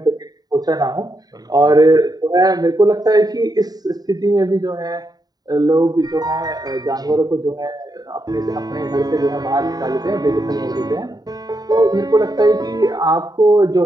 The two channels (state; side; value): late; left; 0.19 ms